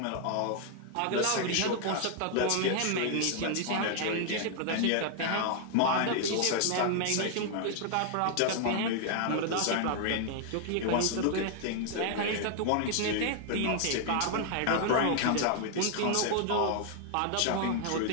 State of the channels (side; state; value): both; different; correlation 0.00